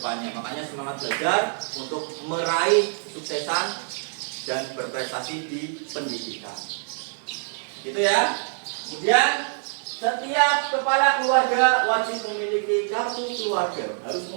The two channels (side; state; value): left; silent; digital silence